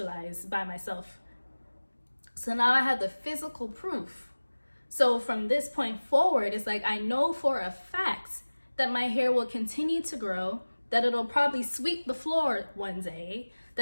by myself. So now I have the physical proof. So from this point forward, it's like I know for a fact that my hair will continue to grow, that it'll probably sweep the floor one day,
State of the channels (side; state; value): both; inverted; correlation -1.00